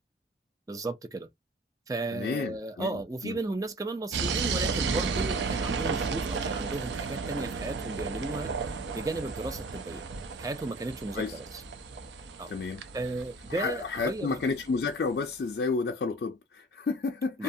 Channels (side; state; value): both; normal; correlation 0.44